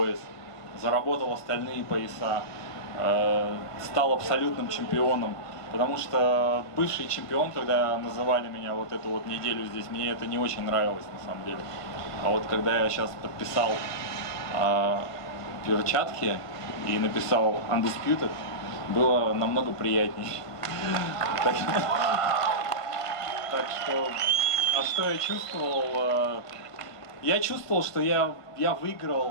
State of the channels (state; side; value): late; right; 1.5 ms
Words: заработал остальные пояса, стал абсолютным чемпионом. Потому что бывший чемпион, когда называли меня вот эту вот неделю здесь, мне это не очень нравилось на самом деле. А вот когда я сейчас подписал перчатки и написал Undisputed, было намного приятней. Так что, а что я чувствовал? Я чувствовал, что я